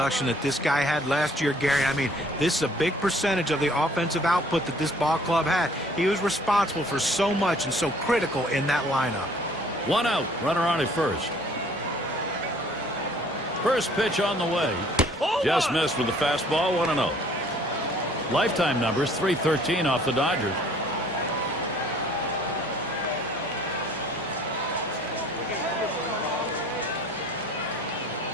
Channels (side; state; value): both; normal; correlation 0.56